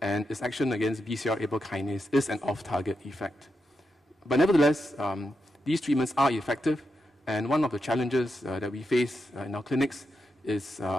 and its action against BCR-ABL kinase is an off-target effect. But nevertheless, these treatments are effective, and one of the challenges that we face in our clinics is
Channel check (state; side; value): normal; both; correlation 0.86